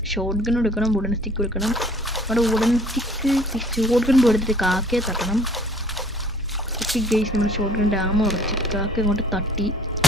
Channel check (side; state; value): both; normal; correlation 0.53